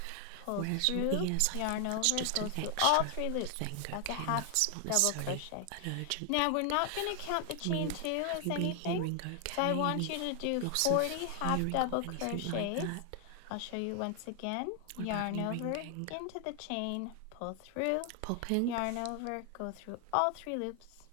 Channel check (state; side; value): different; both; correlation 0.00